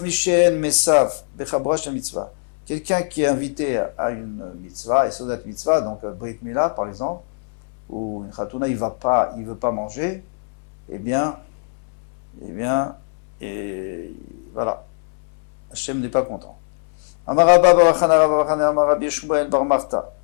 Quelqu'un qui est invité à une mitzvah, et Sodat mitzvah, donc Brit Mila par exemple, ou une Khatouna, il veut pas manger, eh bien, et voilà. Hachem n'est pas content. Amarabba Barachana Rabbi Shmuel Bar Marta.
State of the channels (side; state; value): right; silent; 63 dB below the other